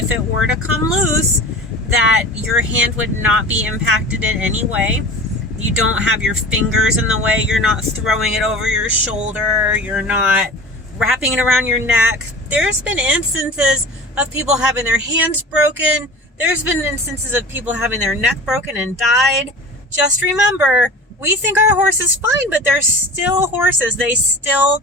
it were to come loose, that your hand would not be impacted in any way. You don't have your fingers in the way. You're not throwing it over your shoulder. You're not wrapping it around your neck. There's been instances of people having their hands broken. There's been instances of people having their neck broken and died. Just remember, we think our horse is fine, but they're still horses. They still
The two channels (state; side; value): normal; both; correlation 0.36